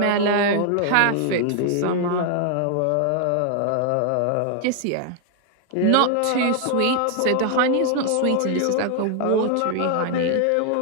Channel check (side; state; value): both; different; correlation 0.00